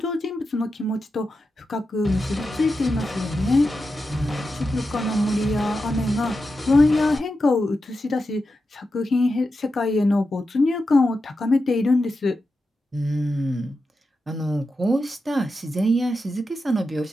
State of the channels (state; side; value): normal; both; correlation 0.89